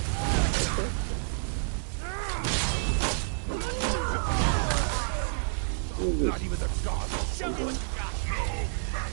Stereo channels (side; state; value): left; silent; digital silence